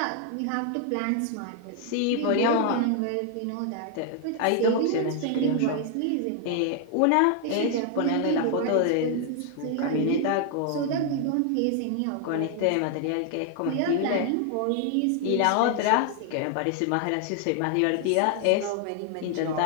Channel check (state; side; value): different; both; correlation 0.00